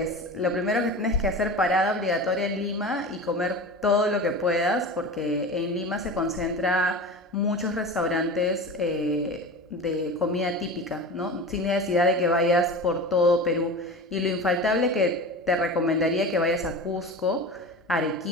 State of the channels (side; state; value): both; normal; correlation 0.31